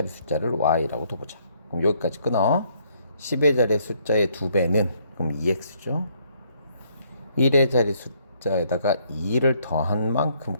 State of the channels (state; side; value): inverted; both; correlation -0.69